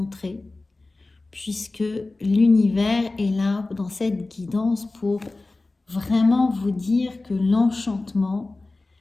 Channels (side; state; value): right; quieter; 3.2 dB